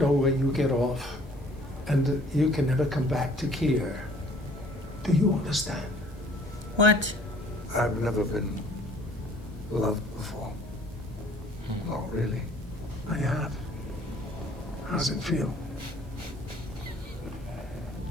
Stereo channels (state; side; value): normal; both; correlation 0.56